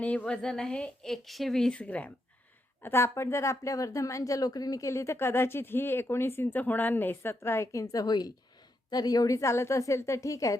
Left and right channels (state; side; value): normal; both; correlation 0.81